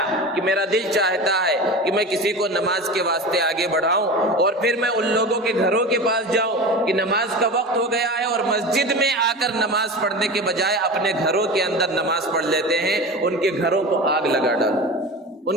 کہ میرا دل چاہتا ہے کہ میں کسی کو نماز کے واسطے آگے بڑھاؤں اور پھر میں ان لوگوں کے گھروں کے پاس جاؤں کہ نماز کا وقت ہو گیا ہے اور مسجد میں آ کر نماز پڑھنے کے بجائے اپنے گھروں کے اندر نماز پڑھ لیتے ہیں، ان کے گھروں کو آگ لگا ڈالو،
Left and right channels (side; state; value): both; normal; correlation 0.30